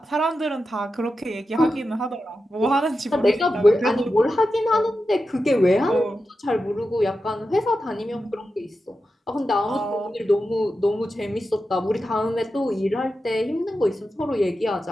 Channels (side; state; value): both; normal; correlation 0.90